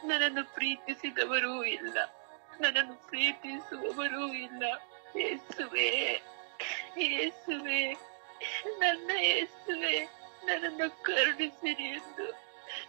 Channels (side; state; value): left; silent; digital silence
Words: ನನ್ನನ್ನು ಪ್ರೀತಿಸಿದವರೂ ಇಲ್ಲ, ನನ್ನನ್ನು ಪ್ರೀತಿಸುವವರೂ ಇಲ್ಲ. ಯೇಸುವೆ, ಯೇಸುವೆ, ನನ್ನ ಯೇಸುವೆ, ನನ್ನನ್ನು ಕರುಣಿಸಿರಿ ಎಂದು